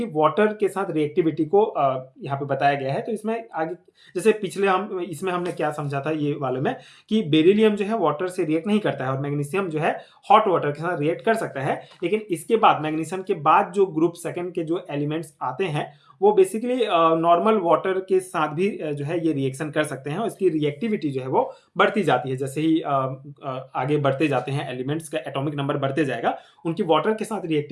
वाटर के साथ रिएक्टिविटी को यहाँ पे बताया गया है। तो इसमें आगे जैसे पिछले इसमें हमने क्या समझा था ये वाले में कि बेरिलियम जो है वाटर से रिएक्ट नहीं करता है और मैग्नीशियम जो है हॉट वाटर के साथ रिएक्ट कर सकता है, लेकिन इसके बाद मैग्नीशियम के बाद जो ग्रुप सेकेंड के जो एलिमेंट्स आते हैं वो बेसिकली नॉर्मल वाटर के साथ भी जो है ये रिएक्शन कर सकते हैं और इसकी रिएक्टिविटी जो है वो बढ़ती जाती है। जैसे ही आगे बढ़ते जाते हैं एलिमेंट्स का एटॉमिक नंबर बढ़ते जाएगा, उनकी वाटर के साथ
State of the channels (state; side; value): identical; both; correlation 1.00